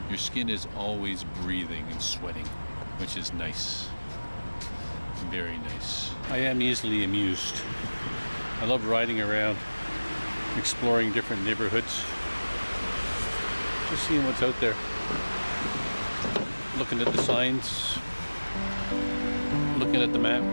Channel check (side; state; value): both; inverted; correlation -1.00